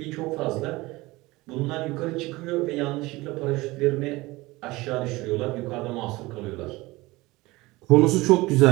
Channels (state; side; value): quieter; left; 20.9 dB